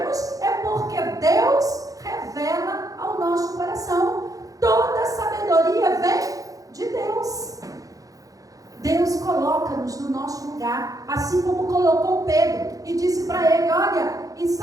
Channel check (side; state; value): left; late; 0.17 ms